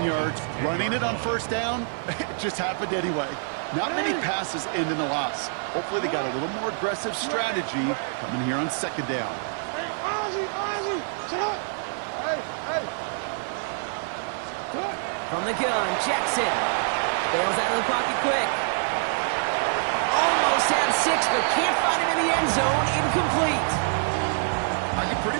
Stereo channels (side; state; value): left; silent; 61 dB below the other